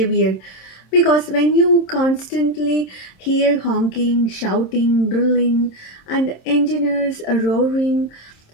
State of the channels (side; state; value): right; late; 27 ms